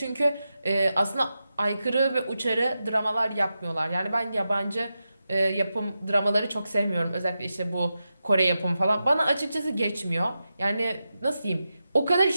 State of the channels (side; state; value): both; inverted; correlation -0.90